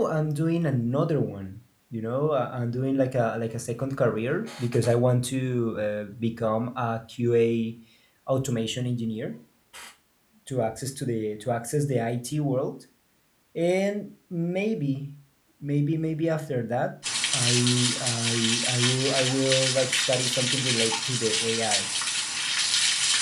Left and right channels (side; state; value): both; identical; correlation 1.00